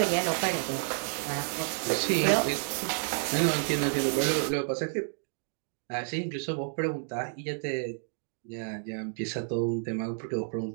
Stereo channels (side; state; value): left; silent; 58 dB below the other